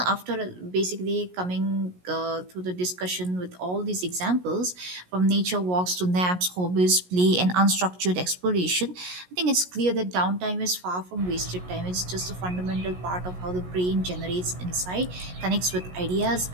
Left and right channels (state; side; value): late; left; 17 ms